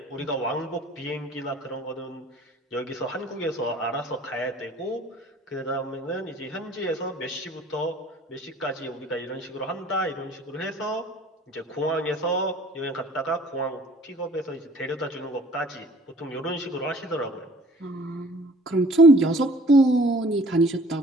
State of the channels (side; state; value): both; normal; correlation 0.52